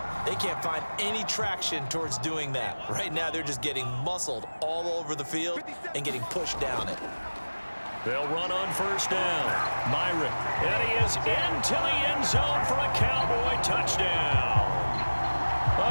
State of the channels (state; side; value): inverted; both; correlation -1.00